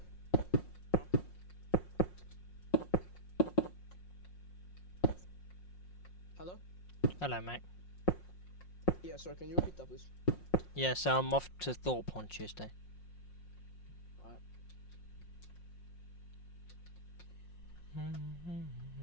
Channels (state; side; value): late; right; 5.6 ms